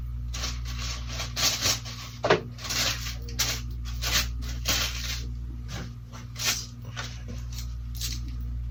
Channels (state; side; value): identical; both; correlation 1.00